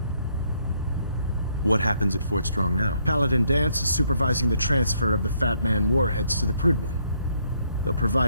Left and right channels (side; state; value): both; inverted; correlation -0.71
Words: What happens at Fort Strong now? Paladin Dance is supervising the transfer of the Fat Man warheads to the Prydwen. They'll